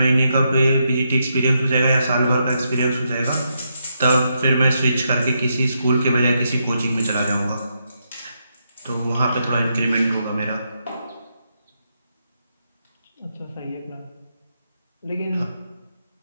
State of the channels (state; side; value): inverted; both; correlation -0.81